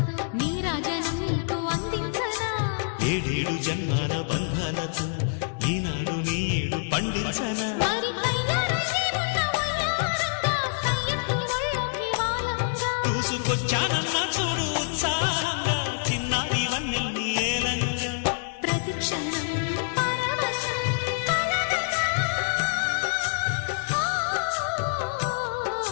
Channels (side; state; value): right; silent; digital silence